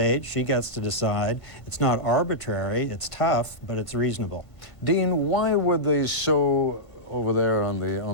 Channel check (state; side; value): late; right; 1.5 ms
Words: she gets to decide. It's not arbitrary, it's tough, but it's reasonable. Dean, why were they so, over there on